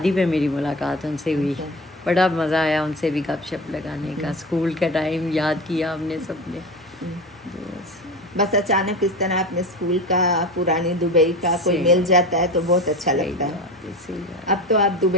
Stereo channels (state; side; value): normal; both; correlation 0.28